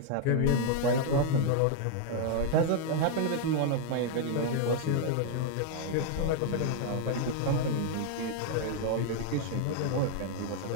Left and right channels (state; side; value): different; both; correlation 0.00